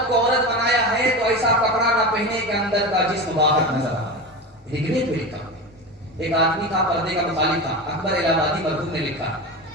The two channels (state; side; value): normal; both; correlation 0.24